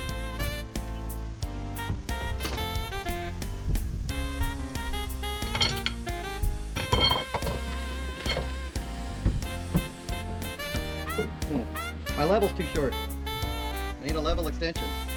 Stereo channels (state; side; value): identical; both; correlation 1.00